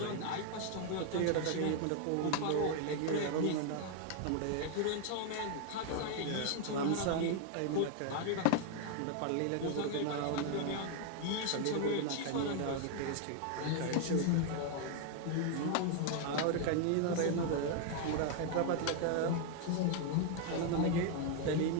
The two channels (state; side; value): different; both; correlation 0.00